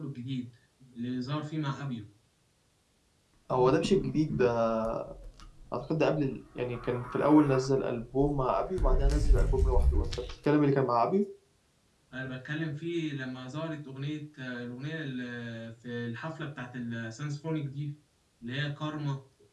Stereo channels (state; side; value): identical; both; correlation 1.00